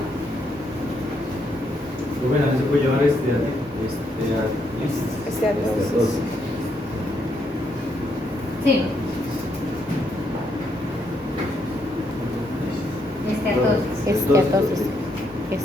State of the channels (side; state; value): both; normal; correlation 0.76